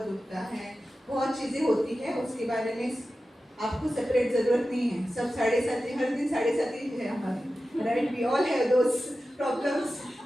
दुखता है, बहुत चीज़ें होती है, उसके बारे में आपको सेपरेट ज़रूरत नहीं है। सब 7.5 हर दिन 7.5 है हमारे, right? We all have those problems,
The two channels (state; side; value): normal; both; correlation 0.93